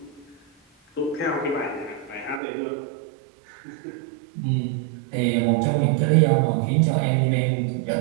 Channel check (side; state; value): left; drops out; at 2.4 s